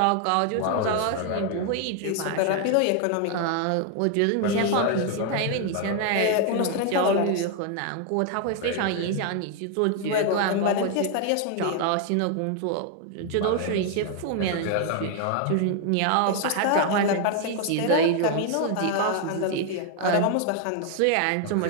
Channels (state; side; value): different; both; correlation 0.00